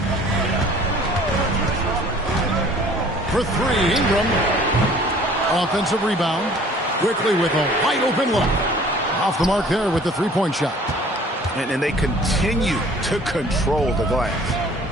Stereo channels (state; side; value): normal; both; correlation 0.52